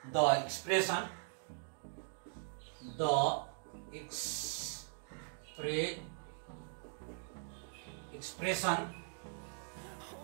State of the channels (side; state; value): left; silent; digital silence